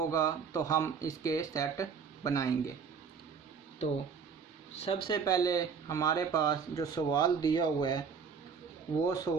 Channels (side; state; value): left; quieter; 6.1 dB